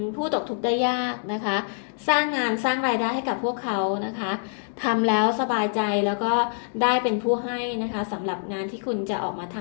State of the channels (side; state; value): right; silent; digital silence